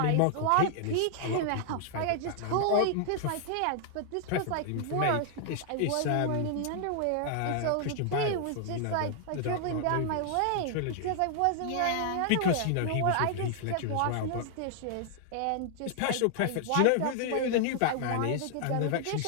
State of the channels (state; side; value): different; both; correlation 0.00